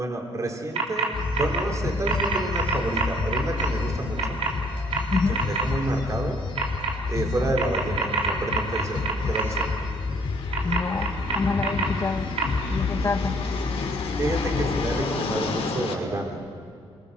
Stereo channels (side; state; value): both; normal; correlation 0.62